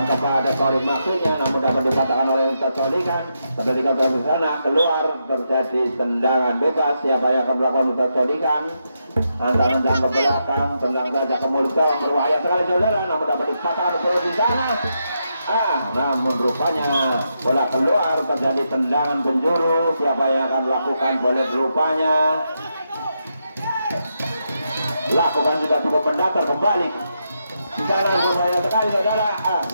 kepada Torik maksudnya, namun dapat dipatahkan oleh Ustaz Solikan. Ketika di sana keluar, terjadi tendangan bebas. Siapa yang akan melakukan Ustaz Solikan? Tendang ke belakang, tendang saja ke mulut gawang, berbahaya sekali saudara, namun dapat dipatahkan oleh di sana. Namun rupanya bola keluar, terjadi tendangan penjuru. Siapa yang akan melakukan? Boleh rupanya lakukan sudah cukup mendatar kembali. Di sana berbahaya sekali saudara,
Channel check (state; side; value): inverted; both; correlation -0.83